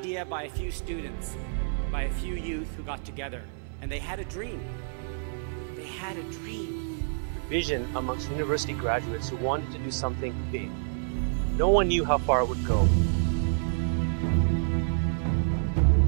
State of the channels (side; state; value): left; silent; 59 dB below the other